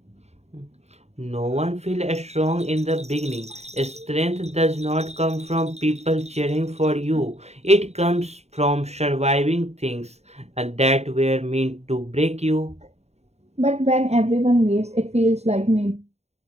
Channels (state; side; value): late; left; 0.32 ms